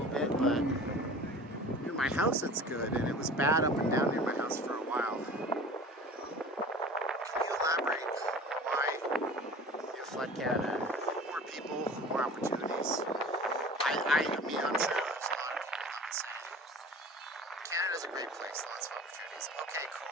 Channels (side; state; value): both; normal; correlation 0.40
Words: bit, but near my house it's good, and it was bad up and down near my house for a while. Can you elaborate why you flood Canada? More people, more opportunities. I mean, honestly, there's a lot of people that would say Canada's a great place, lots of opportunities. Okay,